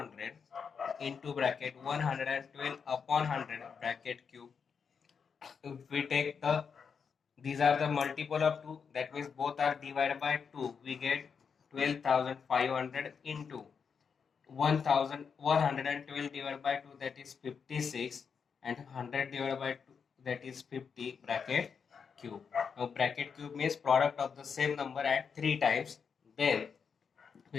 into bracket 112 upon 100 bracket cube. If we take these are the multiple of 2, that means both are divided by 2, we get 12,500 into 1,112 divided by 2, that is 56, and 100 divided by 2, that is 50 bracket cube. Now bracket cube means product of the same number at 3 times. Then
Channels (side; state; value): right; quieter; 6.2 dB